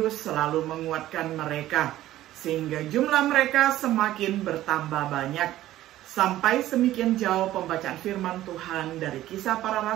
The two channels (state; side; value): quieter; left; 14.3 dB